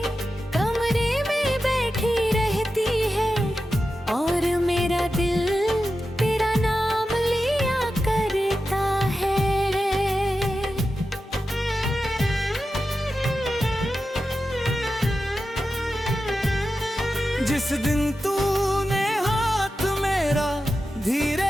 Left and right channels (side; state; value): both; normal; correlation 0.91